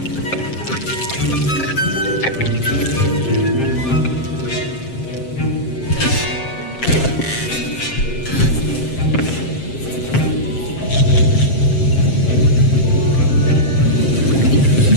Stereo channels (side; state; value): right; late; 7.6 ms